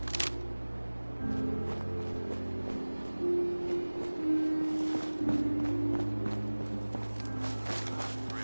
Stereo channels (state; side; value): inverted; both; correlation -1.00